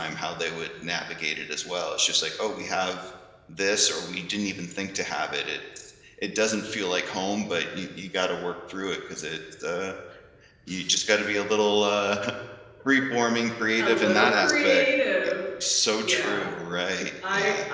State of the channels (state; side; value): identical; both; correlation 1.00